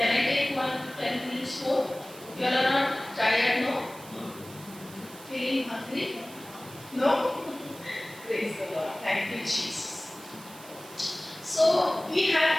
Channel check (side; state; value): right; noise; hiss, 18 dB below the sound